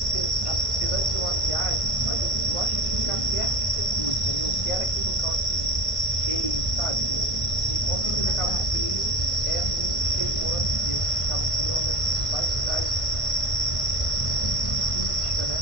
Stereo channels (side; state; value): right; late; 1.5 ms